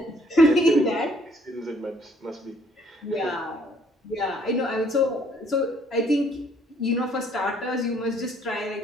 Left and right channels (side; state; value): both; normal; correlation 0.63